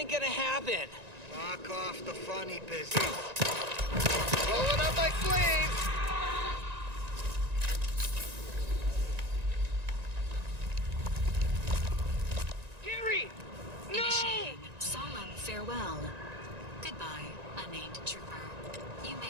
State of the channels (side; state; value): left; late; 1.9 ms